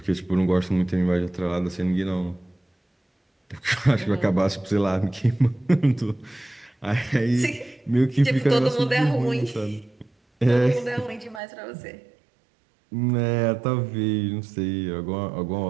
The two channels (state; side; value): drops out; left; at 11.4 s